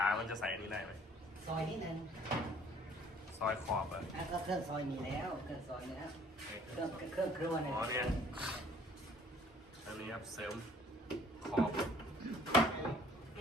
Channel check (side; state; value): both; normal; correlation 0.57